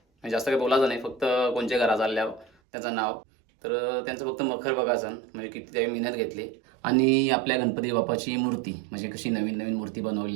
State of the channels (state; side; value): drops out; left; at 2.5 s